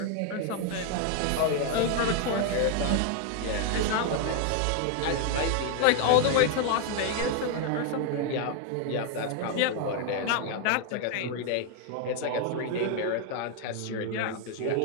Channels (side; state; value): both; different; correlation 0.00